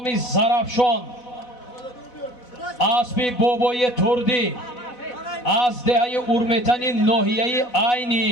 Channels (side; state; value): right; late; 4.1 ms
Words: Зарафшон, асби Бобои Турдӣ, аз деҳаи Урметани ноҳияи Айни.